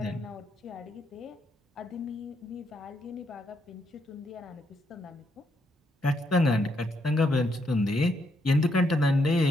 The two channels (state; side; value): normal; both; correlation 0.77